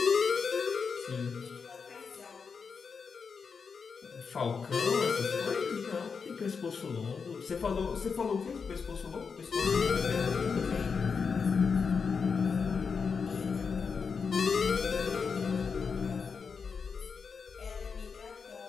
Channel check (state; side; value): quieter; right; 5.6 dB